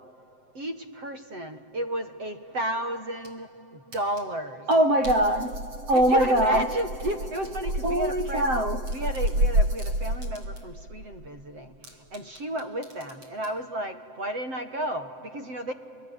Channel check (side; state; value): left; late; 7.7 ms